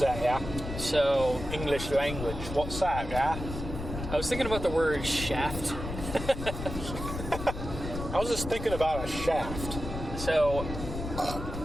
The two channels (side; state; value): left; noise; rumble, 7 dB below the sound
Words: that, yeah? So... English language. What's that, yeah? I was thinking about the word shaft. I was just thinking about a shaft. So,